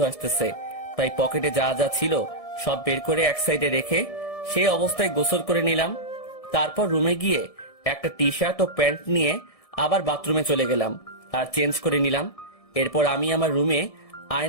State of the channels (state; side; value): late; right; 1.6 ms